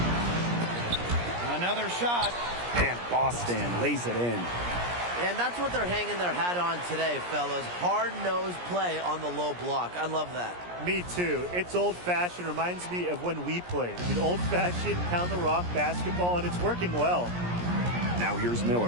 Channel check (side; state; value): left; late; 17 ms